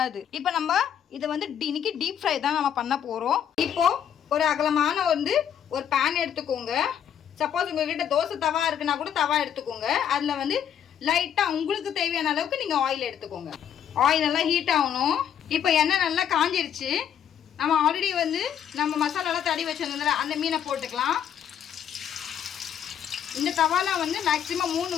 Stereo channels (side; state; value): right; quieter; 9.2 dB